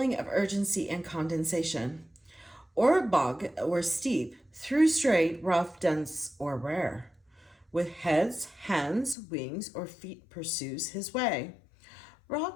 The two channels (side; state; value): right; drops out; at 9.2 s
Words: of urgency and condensation. Or bog or steep, through straight, rough, dense, or rare. With heads, hands, wings, or feet pursues his way.